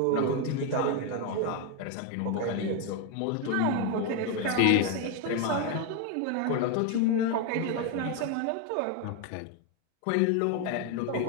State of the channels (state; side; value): different; both; correlation 0.02